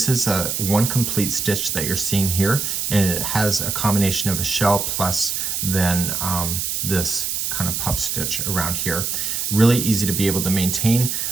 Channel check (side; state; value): right; noise; hiss, 1 dB below the sound